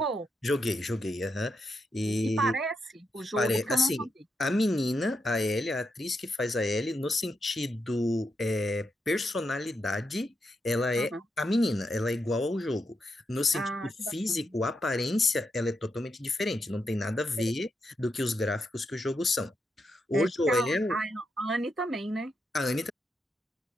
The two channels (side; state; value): both; normal; correlation 0.83